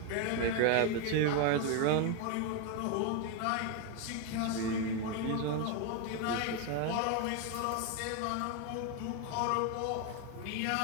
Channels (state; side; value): different; both; correlation 0.01